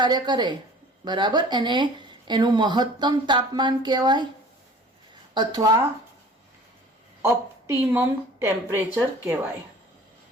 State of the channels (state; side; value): normal; both; correlation 0.47